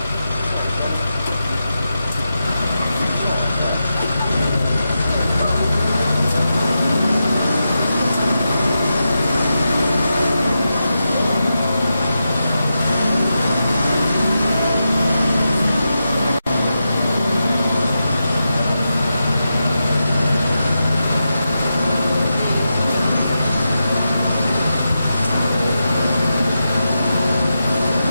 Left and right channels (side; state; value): both; inverted; correlation -0.89